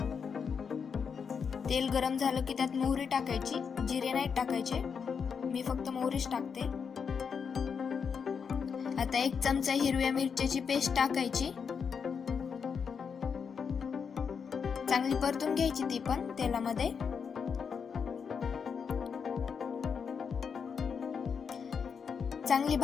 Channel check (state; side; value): quieter; right; 6.3 dB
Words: तेल गरम झालं की त्यात मोहरी टाकायची, जिरे नाही टाकायचे, मी फक्त मोहरीच टाकते। आता 1 चमचा हिरव्या मिरच्याची पेस्ट टाकायची, चांगली परतून घ्यायची ती पण तेलामध्ये। चांगली